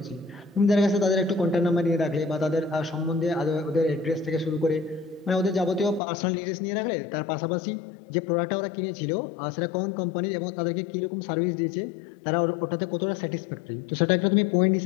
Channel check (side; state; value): right; drops out; at 6.0 s